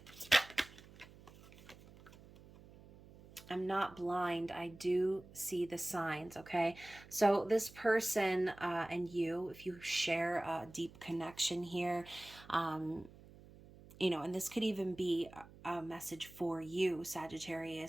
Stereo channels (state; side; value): noise; right; hum, 21 dB below the sound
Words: I'm not blind. I do see the signs, okay? So this person and you, if you share a deep connection here, you know, and this could even be a message for you,